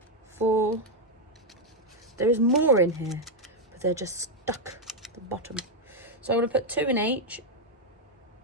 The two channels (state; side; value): normal; both; correlation 0.01